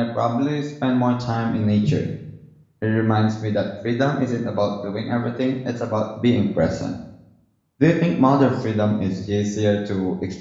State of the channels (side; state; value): both; identical; correlation 1.00